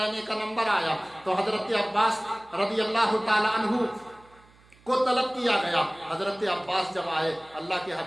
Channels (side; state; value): right; noise; hum, 28 dB below the sound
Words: का नंबर आया तो हजरत अब्बास रज़ी अल्लाह ताला अन्हु کو طلب کیا گیا۔ حضرت عباس جب آئے، اللہ کے